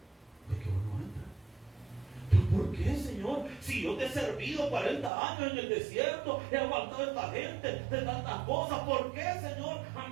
¿Por qué no va a entrar? ¿Pero por qué, Señor? Si yo te he servido 40 años en el desierto, he aguantado a esta gente de tantas cosas, ¿por qué, Señor? A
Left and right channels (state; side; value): drops out; left; at 5.1 s